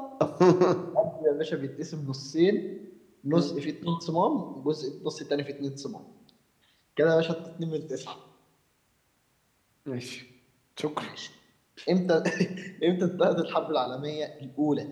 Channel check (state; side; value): identical; both; correlation 1.00